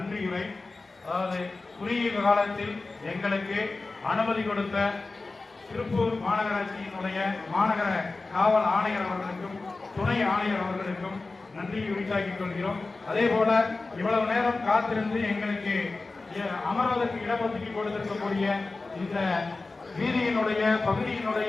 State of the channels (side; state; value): right; quieter; 3.6 dB